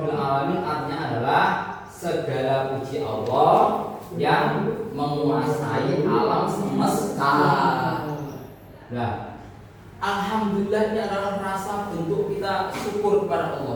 alamin artinya adalah segala puji Allah yang menguasai alam semesta. Nah, alhamdulillah ini adalah rasa bentuk kita syukur kepada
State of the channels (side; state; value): both; identical; correlation 1.00